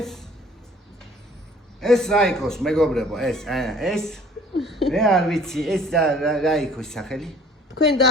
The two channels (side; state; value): both; normal; correlation 0.52